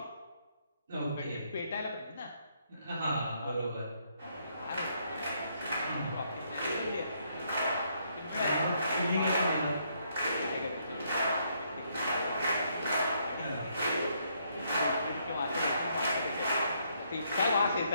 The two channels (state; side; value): inverted; both; correlation -0.72